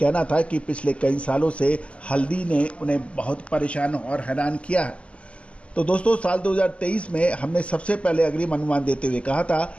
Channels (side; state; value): right; late; 0.059 ms